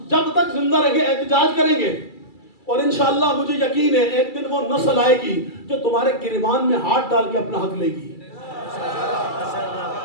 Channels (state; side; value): late; right; 2.3 ms